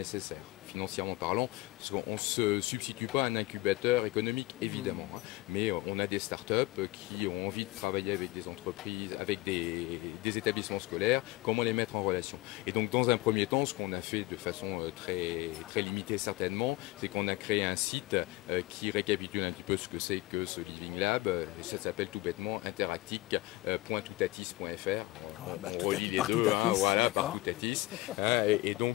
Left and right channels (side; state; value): right; quieter; 19.2 dB